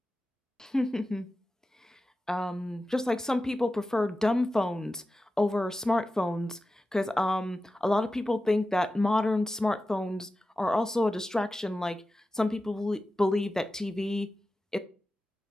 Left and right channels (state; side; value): normal; both; correlation 0.94